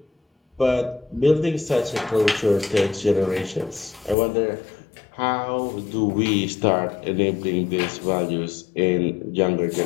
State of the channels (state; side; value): drops out; right; at 4.2 s